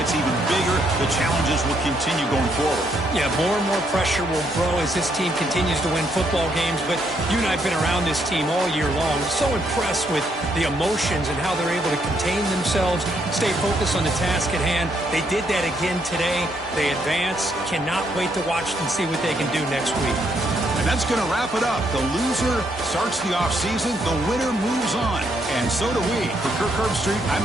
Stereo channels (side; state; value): right; noise; hum, 21 dB below the sound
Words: even bigger. The challenges will continue going forward. Yeah, more and more pressure will grow as this team continues to win football games. But you and I have been around this team all year long. So impressed with the emotions and how they're able to contain themselves, stay focused on the task at hand. They did that again today. They advance. Cannot wait to watch and see what they can do next week. And that's going to wrap it up. The loser starts the offseason. The winner moves on. And so do we. For Kirk Herbstreit, I'm